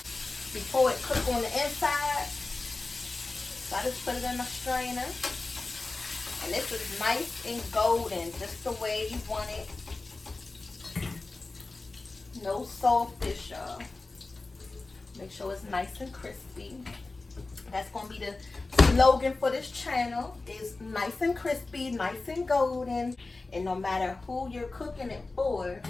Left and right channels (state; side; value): quieter; right; 3.4 dB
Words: before it cooks on the inside. So I just put it in my strainer. And this is nice and golden, just the way you want it. No saltfish, y'all. Make sure it's nice and crispy. That's going to be the slogan for this channel, is nice and crispy, nice and golden. And no matter who you're cooking it for,